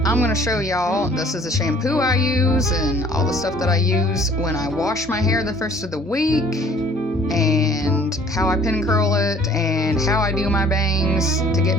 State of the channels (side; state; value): both; normal; correlation 0.53